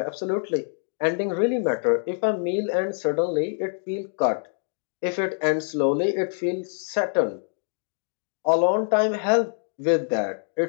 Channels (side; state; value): right; silent; digital silence